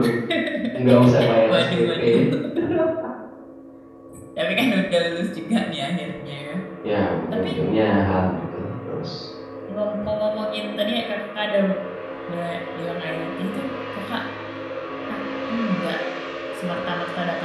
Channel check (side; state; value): both; identical; correlation 1.00